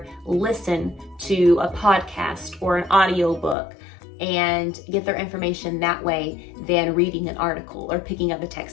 listen to a podcast or an audio book and get their information that way than reading an article or picking up a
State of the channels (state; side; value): drops out; right; at 3.6 s